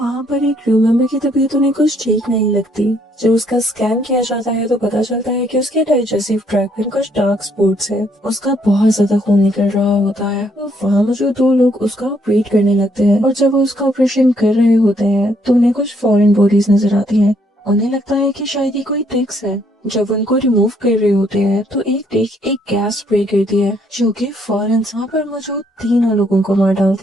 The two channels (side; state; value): both; normal; correlation 0.70